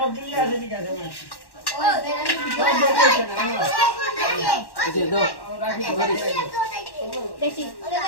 এই দাও বেশি।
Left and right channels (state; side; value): late; right; 1.1 ms